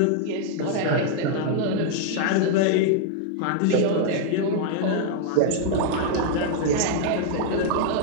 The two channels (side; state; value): both; different; correlation 0.00